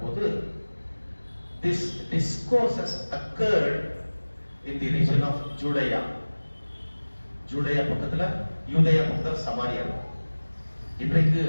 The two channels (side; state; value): both; inverted; correlation -1.00